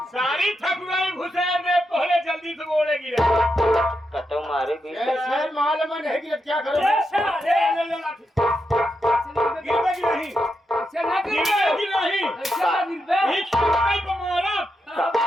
सारी ठकुराई घुसे में पहले जल्दी से गोड़े गिरे। कतो मारे भी ऐसे माल में नहीं गिरे, क्या करो? गिरबे की नहीं, गिरबे की नहीं,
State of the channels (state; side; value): normal; both; correlation 0.85